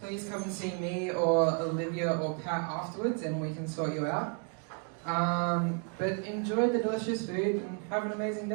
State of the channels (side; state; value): left; quieter; 38.8 dB